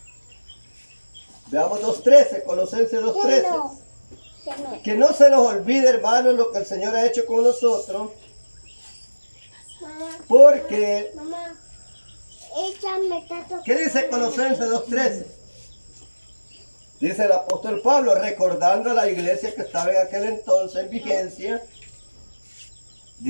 veamos 2.13, Colosenses 2.13. Que no se nos olvide, hermanos, lo que el Señor ha hecho con nosotros, porque ¿qué dice Colosenses 2.13? Dice el apóstol Pablo, recordando a la iglesia que estaba en aquel entonces en vigencia,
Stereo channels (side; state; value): both; inverted; correlation -1.00